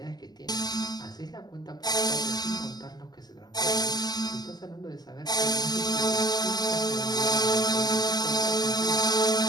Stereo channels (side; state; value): right; late; 0.20 ms